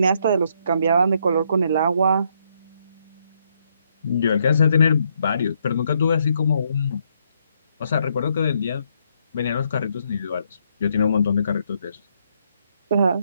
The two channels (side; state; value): both; inverted; correlation -0.74